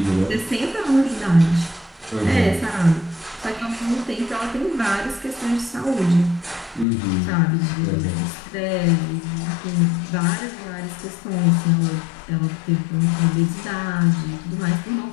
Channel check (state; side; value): drops out; right; at 6.9 s